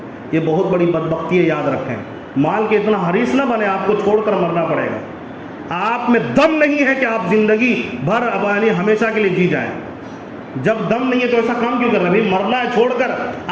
یہ بہت بڑی بدبختی ہے، یاد رکھیں. مال کے اتنا حریص نہ بنے، آپ کو چھوڑ کر مرنا پڑے گا. آپ میں دم نہیں ہے کہ آپ زندگی بھر یعنی ہمیشہ کے لیے جی جائیں. جب دم نہیں ہے تو ایسا کام کیوں کر رہے ہیں؟ مرنا ہے چھوڑ کر.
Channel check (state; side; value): identical; both; correlation 1.00